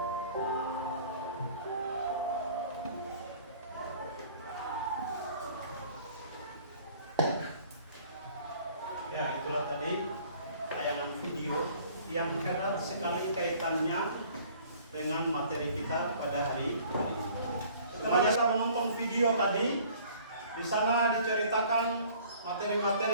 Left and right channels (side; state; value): both; inverted; correlation -0.53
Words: Ya, itulah tadi tayangan video yang erat sekali kaitannya dengan materi kita pada hari ini. Setelah kita menonton video tadi, di sana diceritakan